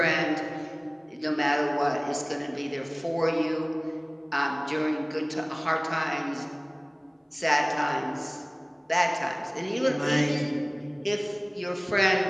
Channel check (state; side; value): identical; both; correlation 1.00